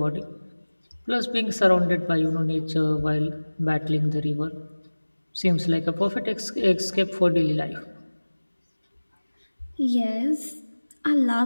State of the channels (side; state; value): both; inverted; correlation -1.00